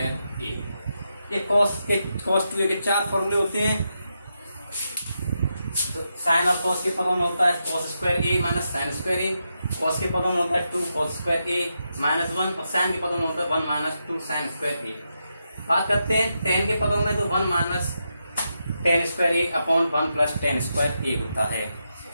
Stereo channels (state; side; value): inverted; both; correlation -0.85